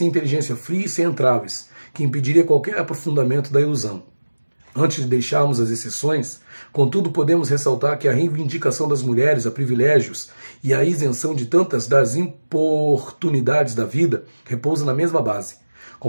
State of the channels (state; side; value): inverted; both; correlation -1.00